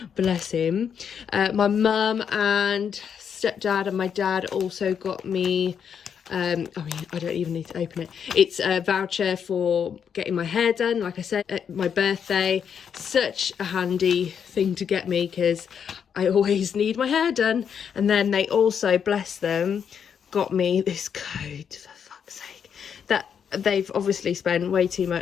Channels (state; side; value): quieter; right; 7.6 dB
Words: Bless him. My mum and stepdad and my dad also got me... I mean, I don't even need to open it. It's a voucher for getting my hair done, like I said, at my birthday. Such a handy thing to get me, because I always need my hair done. And then they also, bless them, got me this coat, for fuck's sake, that they've obviously spent way too